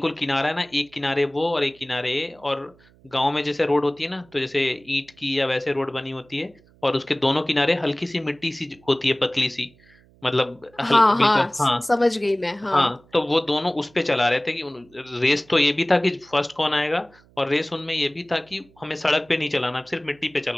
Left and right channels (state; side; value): noise; right; hum, 29 dB below the sound